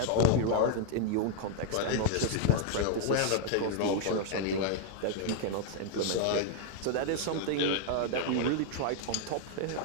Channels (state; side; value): different; both; correlation 0.00